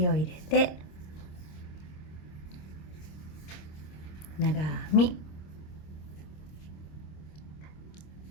を入れて長編み、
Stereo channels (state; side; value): late; right; 26 ms